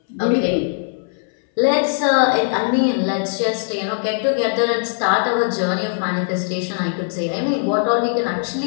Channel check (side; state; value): right; silent; 60 dB below the other